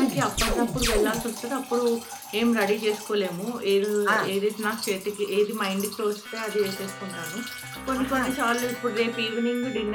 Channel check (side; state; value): both; identical; correlation 1.00